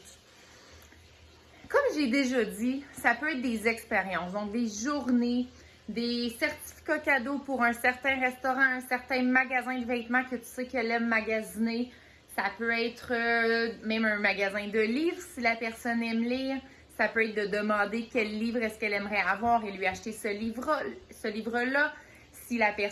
comme j'ai déjà dit, ça peut être des expériences, donc des journées, des certificats cadeaux pour un certain restaurant, un certain magasin de vêtements que tu sais qu'elle aime magasiner. Ça peut être même un magasin de livres si la personne aime lire. Ça peut être de demander quel livre est-ce qu'elle aimerait avoir et lui acheter ce livre-là. Si la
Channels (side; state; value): both; identical; correlation 1.00